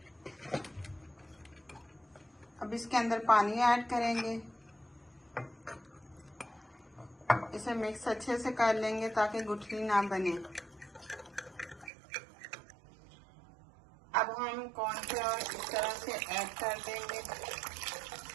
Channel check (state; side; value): drops out; left; at 11.9 s